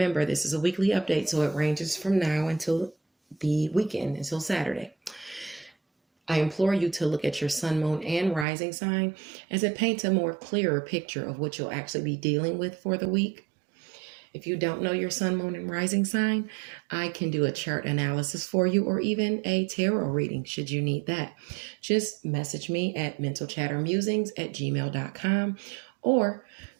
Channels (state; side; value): drops out; left; at 8.5 s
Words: this is a weekly update, so it ranges from now until the weekend, until Saturday. I implore you to look at your sun, moon, and rising sign, as it paints a more clearer picture of what you'll actually be dealing with for the week. If you don't know your sun, moon, and rising sign, I can do a chart analysis for you, or even a tarot reading should you need that. Just message me at mentalchattermusings@gmail.com, or